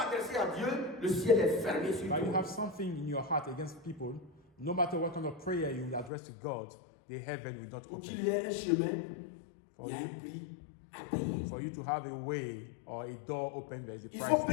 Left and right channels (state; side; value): drops out; right; at 6.1 s